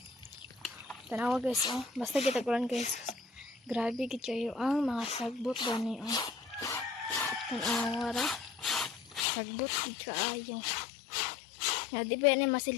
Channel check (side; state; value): right; drops out; at 9.2 s